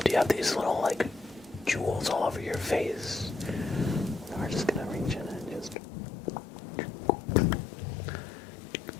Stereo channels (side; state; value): right; drops out; at 5.8 s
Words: You have these little, like, jewels all over your face. We're just gonna reach in and just